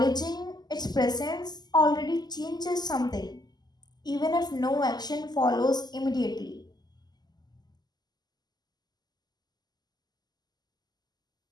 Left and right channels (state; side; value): late; right; 0.20 ms